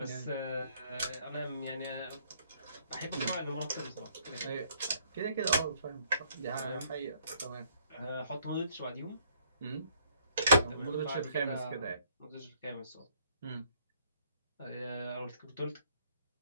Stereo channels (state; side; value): inverted; both; correlation -0.65